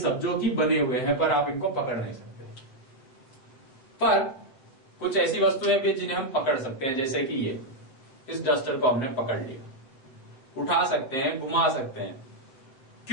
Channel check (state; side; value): late; right; 7.7 ms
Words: जो कि बने हुए हैं, पर आप इनको पकड़ नहीं सकते। पर कुछ ऐसी वस्तुएं भी जिन्हें हम पकड़ सकते हैं, जैसे कि ये, इस डस्टर को हमने पकड़ लिया, उठा सकते हैं, घुमा सकते हैं।